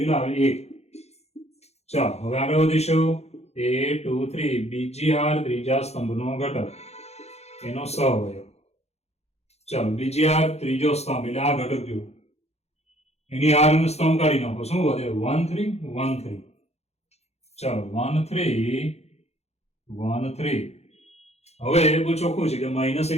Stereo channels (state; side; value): late; right; 0.31 ms